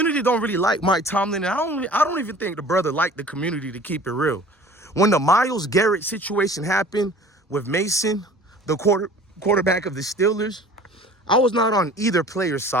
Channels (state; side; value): normal; both; correlation 0.46